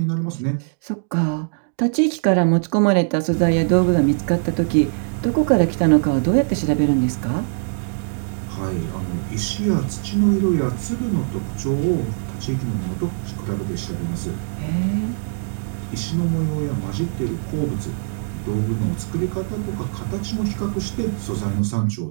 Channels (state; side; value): silent; left; digital silence